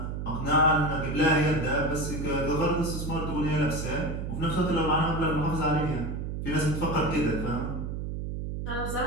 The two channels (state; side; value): noise; right; hum, 4 dB below the sound